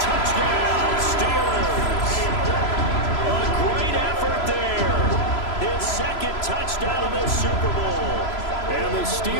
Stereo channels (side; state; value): right; late; 3.0 ms